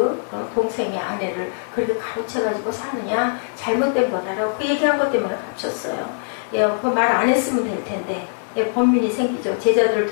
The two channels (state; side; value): silent; right; digital silence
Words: 동생의 아내를 그렇게 가로채가지고 사느냐. 잘못된 거다라고 그 얘기한 것 때문에 갇혔어요. 그 말 안 했으면 될 텐데 번민이 생기죠. 제자들을